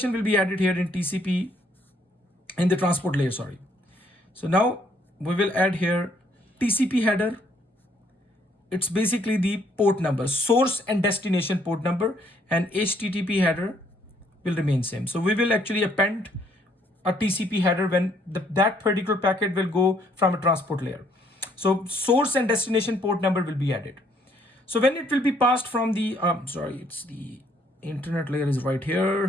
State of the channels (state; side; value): normal; both; correlation 0.66